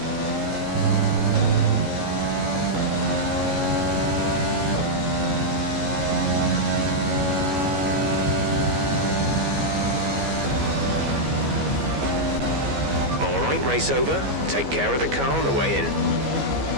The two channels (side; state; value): left; late; 14 ms